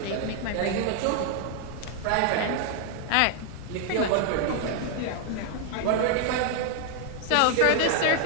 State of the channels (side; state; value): both; different; correlation 0.00